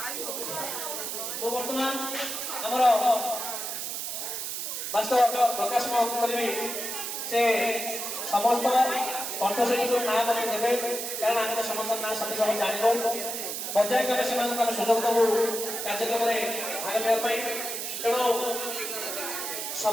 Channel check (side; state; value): right; noise; hiss, 4 dB below the sound